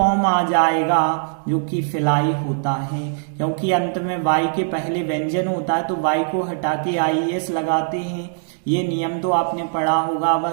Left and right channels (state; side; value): silent; left; 65 dB below the other